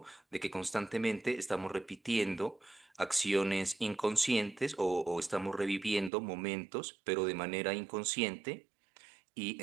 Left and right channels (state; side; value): drops out; left; at 6.1 s